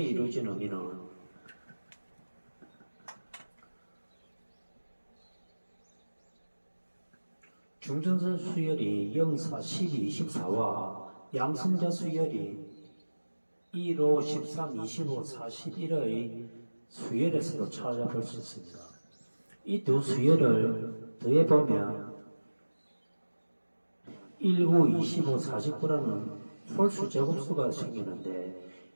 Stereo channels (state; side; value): inverted; both; correlation -1.00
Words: 이루어진 의미는 중전선 수열이 0, 4, 12, 24와 양성자 수열이 1, 5, 13, 25, 41의 수열에서도 찾아볼 수 있습니다. 이 두 수열을 더해보면 19, 25, 49라는 홀수 제곱수가 생기는데